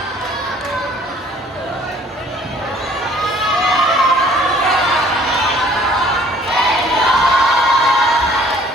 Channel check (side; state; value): both; normal; correlation 0.56